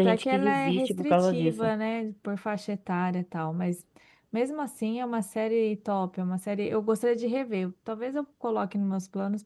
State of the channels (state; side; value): identical; both; correlation 1.00